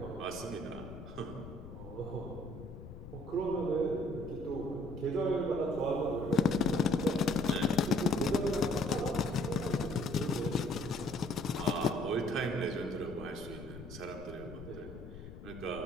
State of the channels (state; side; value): noise; left; rumble, 13 dB below the sound